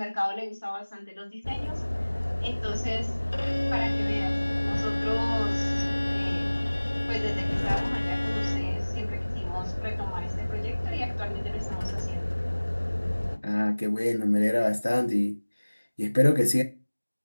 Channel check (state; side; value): inverted; both; correlation -1.00